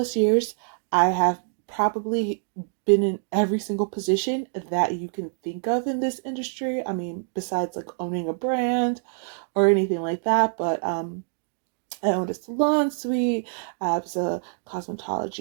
years. I have probably been in every single position that you can think of in this industry. I mean, besides like owning a brand or anything like that, but I owned a salon suite. I was a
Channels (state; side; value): silent; left; digital silence